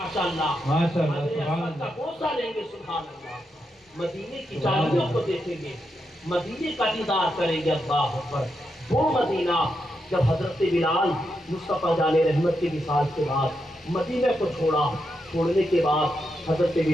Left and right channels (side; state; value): both; normal; correlation 0.84